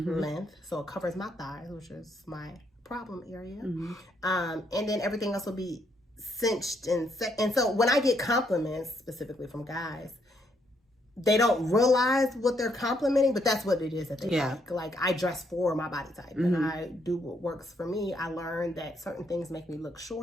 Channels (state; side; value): normal; both; correlation 0.73